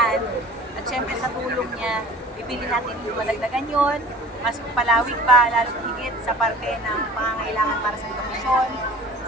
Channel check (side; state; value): both; normal; correlation 0.45